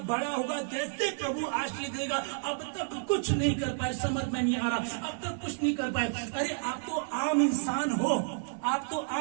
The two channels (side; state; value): left; silent; 57 dB below the other